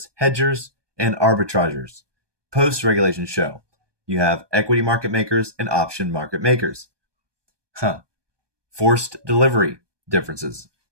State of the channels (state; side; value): late; left; 1.2 ms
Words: hedgers, and arbitragers. Post-regulation show, you have equity market makers and option market makers. Forced delivery differences.